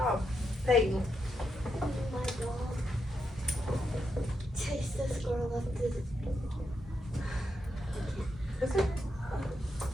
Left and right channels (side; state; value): both; normal; correlation 0.83